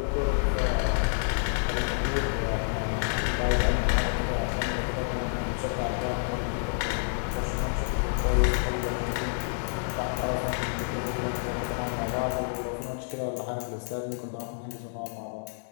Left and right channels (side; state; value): right; silent; digital silence